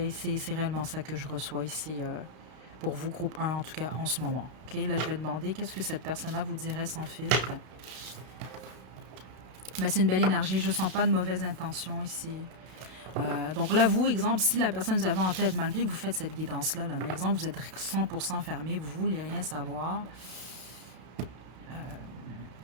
C'est réellement ça que je reçois ici. Pour vous, groupe un, en tout cas en ce moment. OK, là, je vais demander qu'est-ce que cette personne-là vous dirait sans filtre. Mais c'est une belle énergie, je ne sens pas de mauvaise intention ici. Donc là, vous, exemple, si la personne vous avez en tête, malgré que vous faites cette guidance-là, là, mais exemple, vous êtes 100% fermé, vous ne voulez rien savoir,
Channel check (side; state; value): left; late; 32 ms